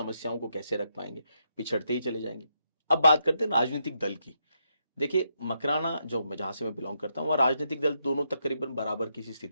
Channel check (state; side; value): inverted; both; correlation -0.79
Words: को कैसे रख पाएंगे? पिछड़ते ही चले जाएंगे। अब बात करते हैं राजनीतिक दल की। देखिए, मकराना जो जहां से मैं बिलोंग करता हूं, वहां राजनीतिक दल दोनों तकरीबन बराबर की